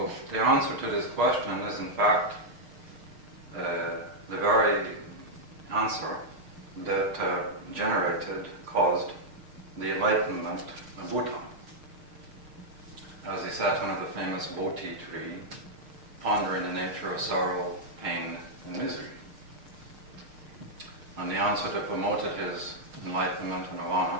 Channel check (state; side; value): late; left; 6.5 ms